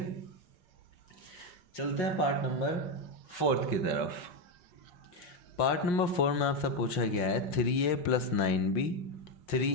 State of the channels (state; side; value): late; right; 5.6 ms